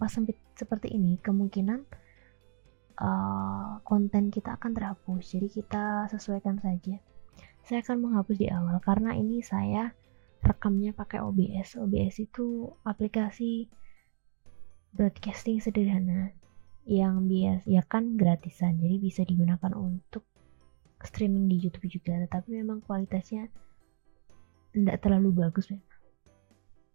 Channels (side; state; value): left; silent; digital silence